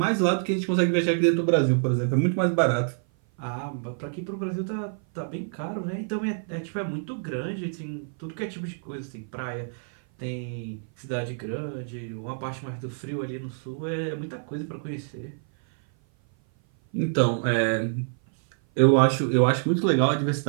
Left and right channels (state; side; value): silent; left; 56 dB below the other